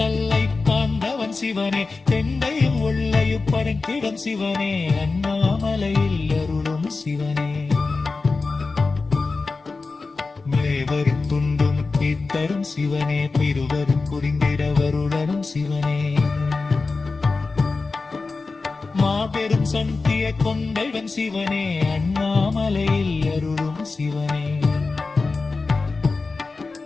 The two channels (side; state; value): right; quieter; 4.0 dB